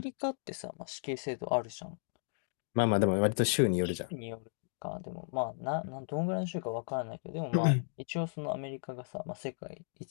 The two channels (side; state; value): right; silent; digital silence